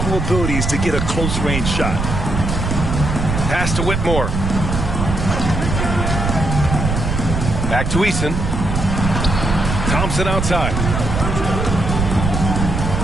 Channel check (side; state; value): right; noise; rumble, 2 dB below the sound